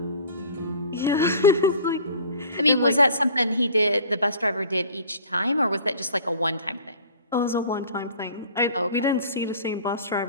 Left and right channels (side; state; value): both; inverted; correlation -0.46